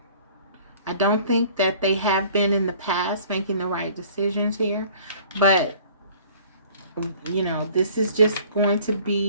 I don't think that they have been in the past making the right decisions here. But, you know, this is just going to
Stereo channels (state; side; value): inverted; both; correlation -0.51